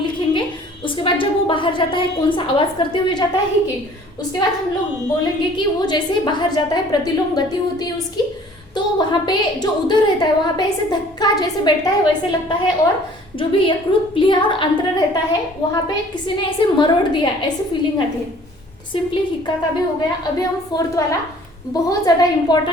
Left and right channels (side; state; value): both; normal; correlation 0.53